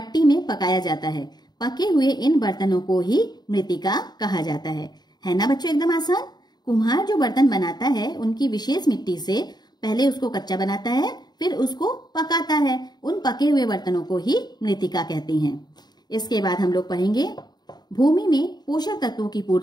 में पकाया जाता है। पके हुए इन बर्तनों को ही मृत्तिका कहा जाता है ना बच्चों, एकदम आसान। कुम्हार जो बर्तन बनाता है उनकी विशेष मिट्टी से पहले उसको कच्चा बनाता है, फिर उसको पकाता है। उन पके हुए बर्तनों को ही मृत्तिका कहते हैं। इसके बाद हम लोग पढ़ेंगे भूमि में पोषक तत्वों की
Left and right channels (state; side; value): late; right; 0.20 ms